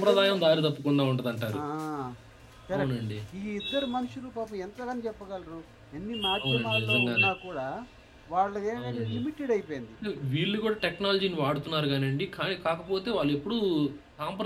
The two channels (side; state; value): both; identical; correlation 1.00